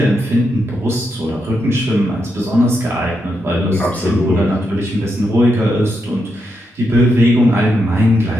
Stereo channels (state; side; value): normal; both; correlation 0.83